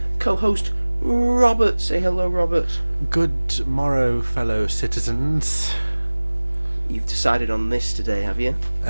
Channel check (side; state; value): both; inverted; correlation -1.00